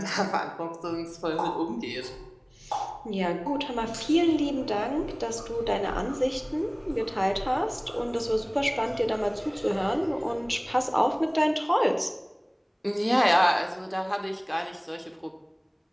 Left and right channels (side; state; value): both; identical; correlation 1.00